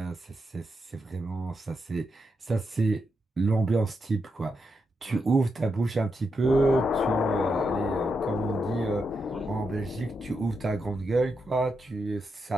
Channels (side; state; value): both; normal; correlation 0.84